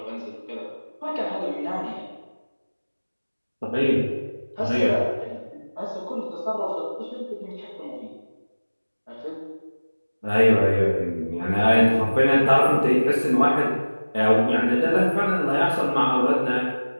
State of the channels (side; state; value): both; inverted; correlation -1.00